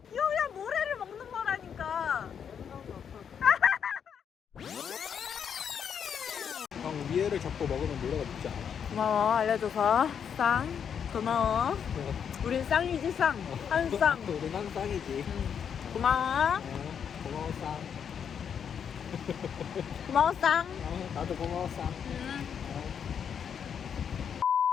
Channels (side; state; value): right; quieter; 7.7 dB